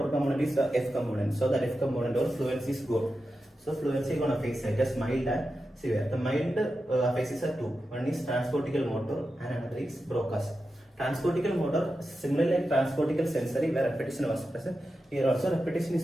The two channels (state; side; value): normal; both; correlation 0.90